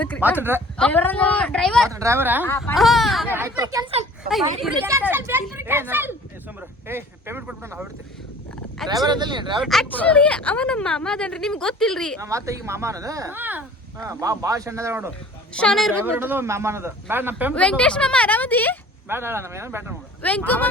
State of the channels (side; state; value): both; normal; correlation 0.47